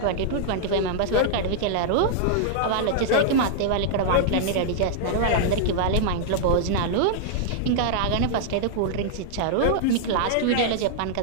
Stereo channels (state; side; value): different; both; correlation -0.01